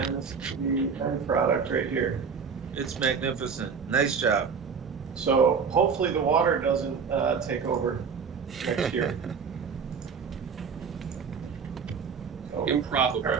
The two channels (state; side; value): quieter; left; 6.0 dB